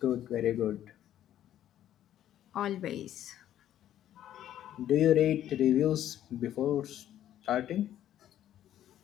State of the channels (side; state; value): right; quieter; 11.7 dB